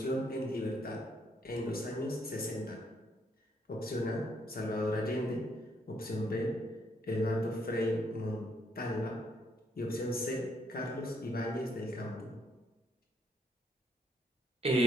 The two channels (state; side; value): normal; both; correlation 0.72